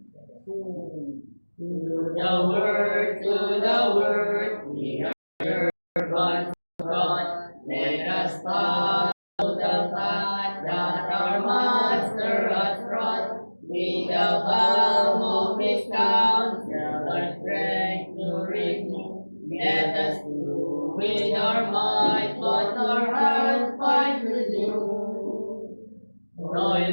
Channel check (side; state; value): both; inverted; correlation -1.00